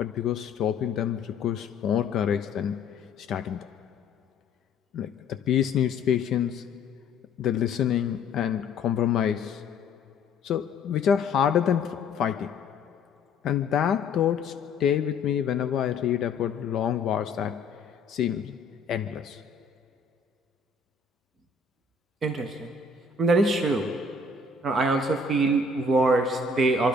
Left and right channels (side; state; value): right; quieter; 3.8 dB